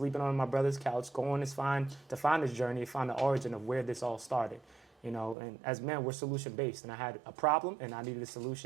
on my brother's couch, going to find this journey, find the origin of where this all started. And as men, we're solution-based. And I had a problem, and I needed a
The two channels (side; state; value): left; drops out; at 5.4 s